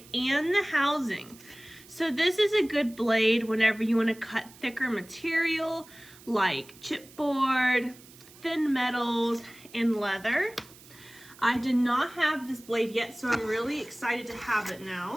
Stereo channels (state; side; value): noise; right; hiss, 22 dB below the sound